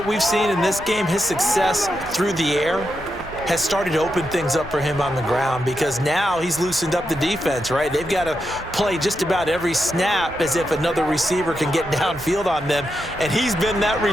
we've seen in this game, his success through the air has started to open things up for him on the ground because now he's loosened up the defense, right? They've got to play just about every snap as if another receiver can get downfield on them, and he's been that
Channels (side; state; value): both; normal; correlation 0.85